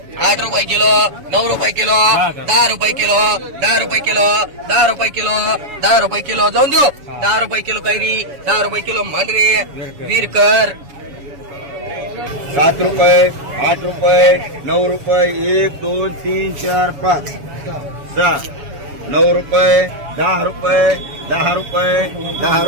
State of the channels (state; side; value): late; left; 7.1 ms